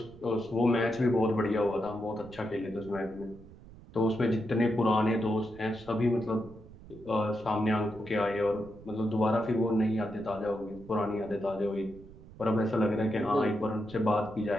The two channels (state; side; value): noise; right; rumble, 19 dB below the sound